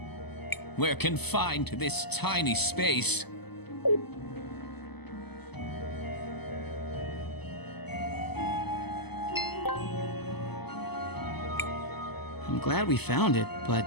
We're confined to this tiny space. I'm glad we found it, but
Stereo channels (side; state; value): right; late; 0.98 ms